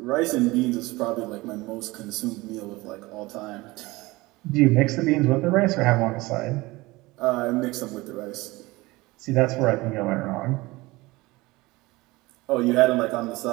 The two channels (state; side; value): quieter; left; 21.3 dB